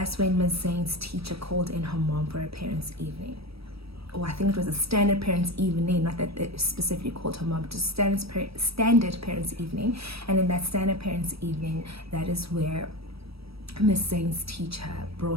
when Ms. Zane's teacher called in her mom for a parents' evening. I think it was a standard parents' evening, not that they specifically called her mom, just standard parents' evening. And in that standard parents' evening, that is where Ms. Zane's teacher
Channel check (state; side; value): late; left; 0.77 ms